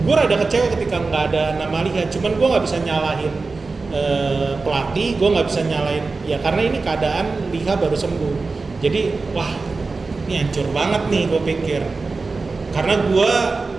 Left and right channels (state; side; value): quieter; left; 4.0 dB